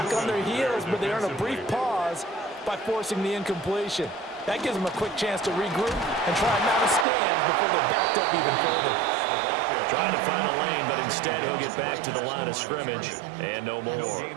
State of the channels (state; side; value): drops out; left; at 7.1 s